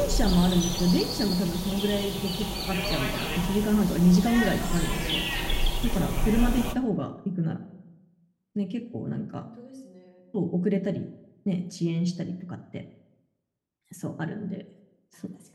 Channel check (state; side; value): identical; both; correlation 1.00